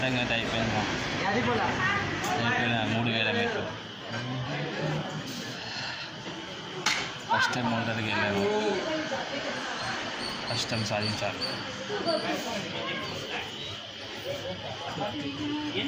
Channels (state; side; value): identical; both; correlation 1.00